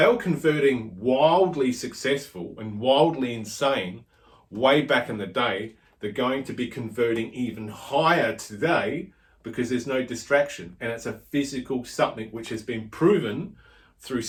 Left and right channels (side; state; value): both; identical; correlation 1.00